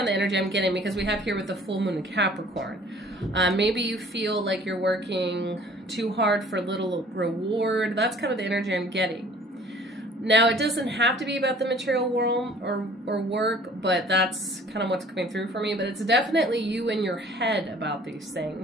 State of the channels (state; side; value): normal; both; correlation 0.52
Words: of the energy I'm getting because we have here with the full moon in Capricorn. Maybe you feel like you're working too hard for little reward. That's kind of the energy I'm getting. Now, it doesn't have to be about the material world or work, but that's kind of what's coming through for me. But it's definitely you in your head about these